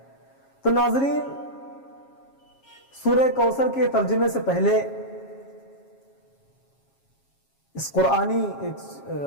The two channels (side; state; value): right; late; 7.4 ms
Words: تو ناظرین سورہ کوثر کے ترجمے سے پہلے اس قرآنی ایک